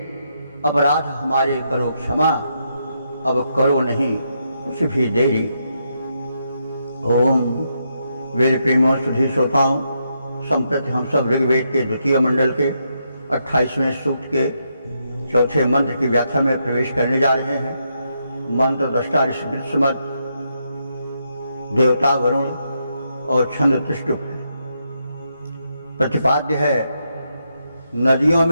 अपराध हमारे करो क्षमा, अब करो नहीं कुछ भी देरी। ओम वेद प्रेमों सुधी श्रोताओं, संप्रति हम सब ऋग्वेद के द्वितीय मंडल के 28वें सूक्त के चौथे मंत्र की व्याख्या में प्रवेश करने जा रहे हैं। मंत्र दृष्टा ऋषि दृश्यमत, देवता वरुण और छंद त्रिष्टुप। प्रतिपाद्य है नदियों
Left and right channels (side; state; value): both; inverted; correlation -0.81